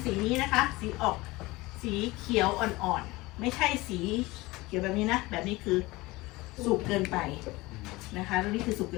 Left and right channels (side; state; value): right; quieter; 21.2 dB